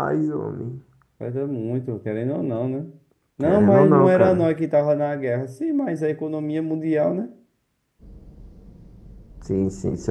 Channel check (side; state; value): both; identical; correlation 1.00